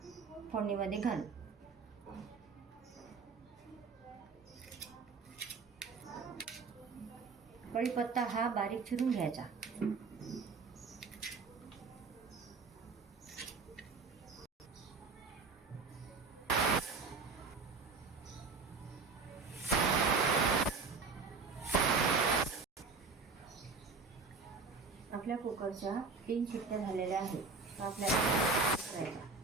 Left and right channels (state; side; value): quieter; left; 4.5 dB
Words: फोडणीमध्ये घालू. कढीपत्ता हा बारीक चिरून घ्यायचा. आपल्या कुकरच्या 3 शिट्ट्या झालेल्या आहेत. आपल्याला करायचा.